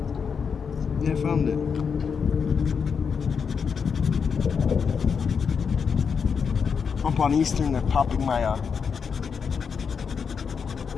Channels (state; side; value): quieter; right; 6.2 dB